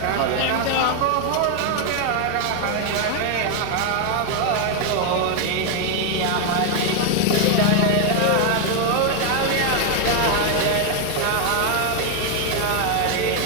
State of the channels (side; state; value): both; different; correlation 0.01